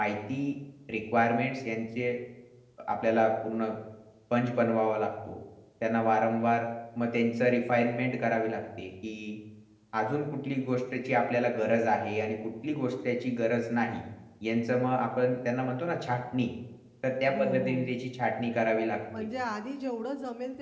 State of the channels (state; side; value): identical; both; correlation 1.00